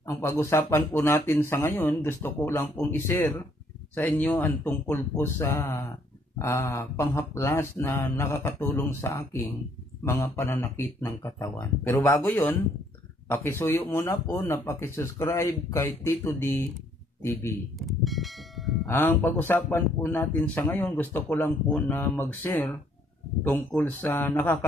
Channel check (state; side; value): normal; both; correlation 0.66